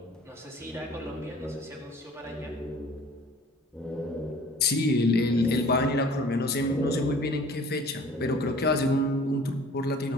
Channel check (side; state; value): both; normal; correlation 0.49